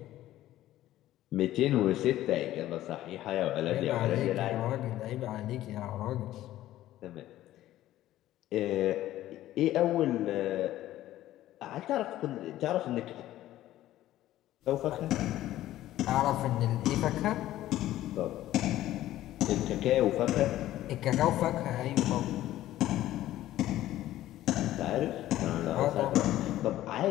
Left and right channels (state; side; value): quieter; right; 14.2 dB